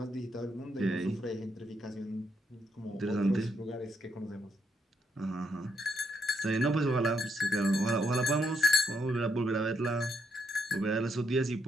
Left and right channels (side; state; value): both; normal; correlation 0.77